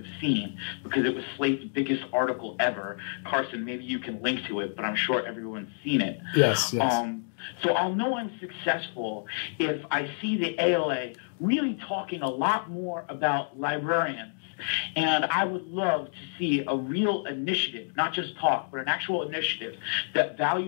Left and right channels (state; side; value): silent; right; digital silence